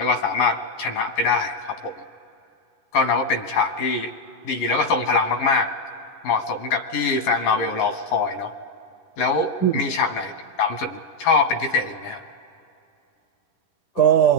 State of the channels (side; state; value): right; late; 11 ms